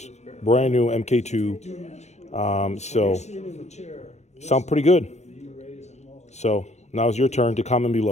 brand new MK2. So, sound pretty good. So, now's your turn to comment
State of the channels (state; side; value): late; right; 0.32 ms